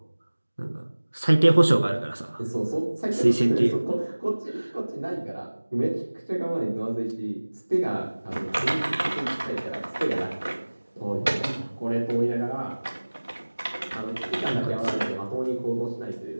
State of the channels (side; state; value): both; inverted; correlation -1.00